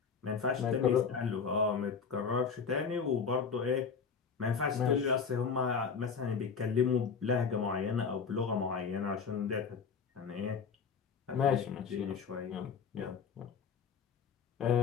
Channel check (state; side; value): quieter; right; 6.0 dB